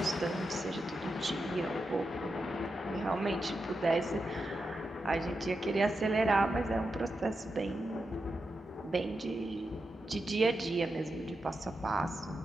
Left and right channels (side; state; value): both; normal; correlation 0.88